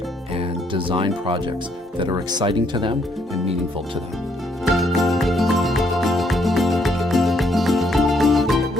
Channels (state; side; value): normal; both; correlation 0.70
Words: and design projects that are exciting to them and meaningful to them.